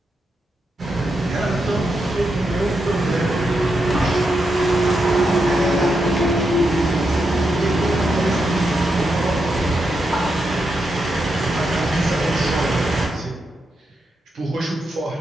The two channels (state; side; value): normal; both; correlation 0.84